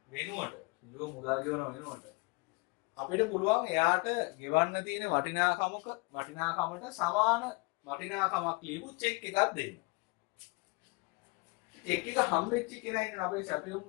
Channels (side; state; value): right; quieter; 28.1 dB